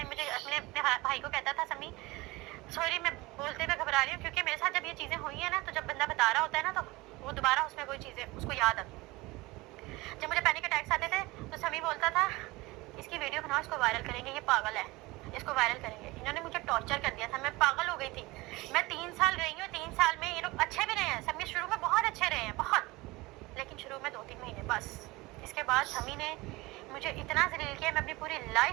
मुझे अपने भाई को कहता था, समी सॉरी मैं बोलते हुए घबरा रही हूँ, क्योंकि मेरे साथ जब ये चीज़ें हुई है ना, तो जब बंदा बता रहा होता है ना, तो वो दोबारा उसमें कोई चीज़ें उसको याद आती। जब मुझे पैनिक अटैक्स आते थे तो समी बोलता था इसकी वीडियो बनाओ, इसको वायरल करेंगे, ये पागल है, इसको वायरल करेंगे। इन्होंने मुझे टॉर्चर कर दिया था, मैं पागल हो गई थी। मैं 3 साल रही हूँ, 3 साल में ये लोग अच्छे भी रहे हैं, समी शुरू में बहुत अच्छे रहे हैं, बहुत, लेकिन शुरू में 2-3 महीने बस। इसके बाद समी ने मुझे इतना जलील किया, मैं अपनी पूरी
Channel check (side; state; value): left; quieter; 21.6 dB